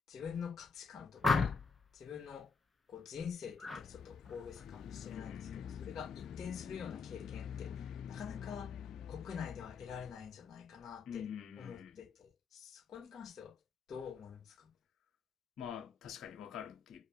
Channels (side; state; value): right; quieter; 5.2 dB